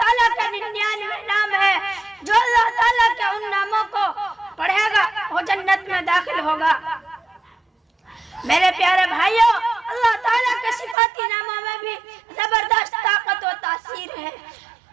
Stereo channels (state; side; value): drops out; left; at 11.0 s